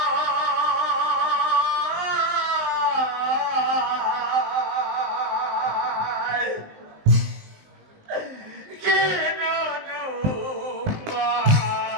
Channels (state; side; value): late; left; 19 ms